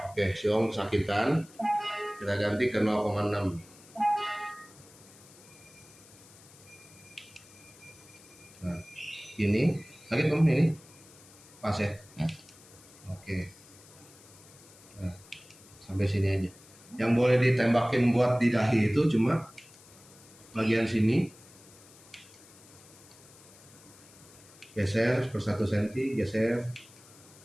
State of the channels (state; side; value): noise; left; hiss, 23 dB below the sound